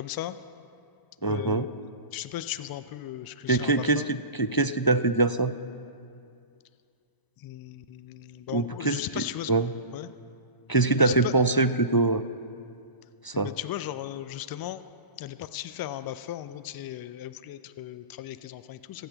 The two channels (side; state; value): right; late; 1.0 ms